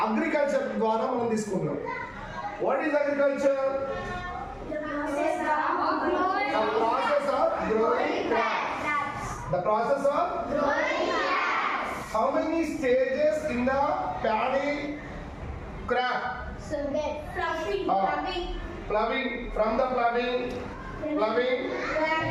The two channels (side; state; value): both; identical; correlation 1.00